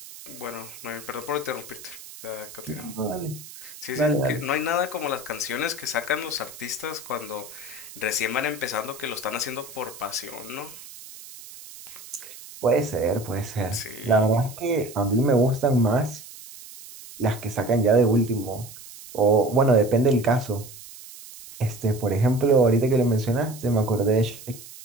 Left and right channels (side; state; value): right; noise; hiss, 16 dB below the sound